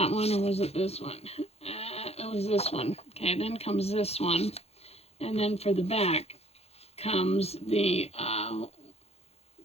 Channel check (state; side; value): late; right; 0.30 ms